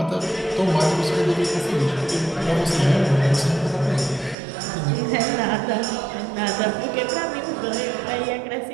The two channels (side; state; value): left; drops out; at 4.4 s